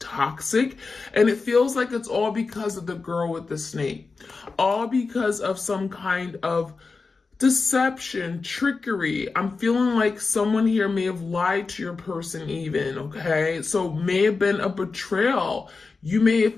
and it feels like it's all because of the girl with the snake, all because of some kind of deception, trickery. I'm feeling like someone here may have lied to your person even, okay? So may have been a betrayal. You may have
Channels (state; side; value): quieter; right; 4.3 dB